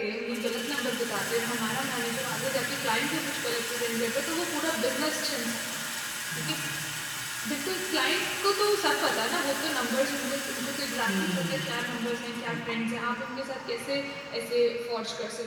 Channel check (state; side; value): identical; both; correlation 1.00